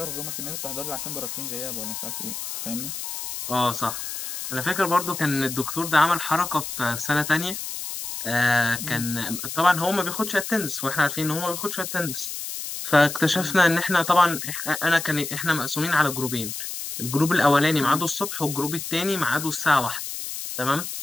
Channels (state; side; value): noise; left; hiss, 6 dB below the sound